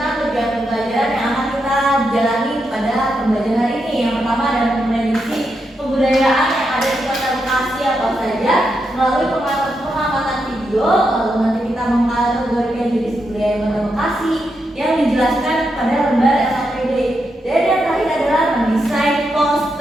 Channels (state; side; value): normal; both; correlation 0.84